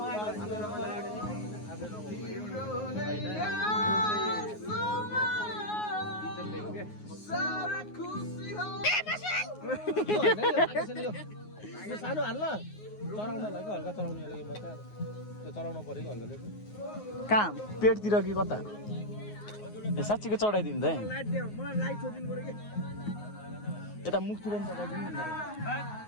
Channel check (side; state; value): right; late; 9.5 ms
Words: सानो हाल्न चराउनलाई कि हल्का चराउने त्यो चराउनु पऱ्यो कि हल्का कहाँ पेटतिर कि कता ए साँच्चीको चढाइदिनु त यता मुखतिर पनि चढाइदिनु